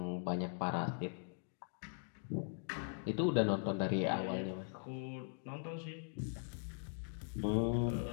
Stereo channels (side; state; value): right; silent; digital silence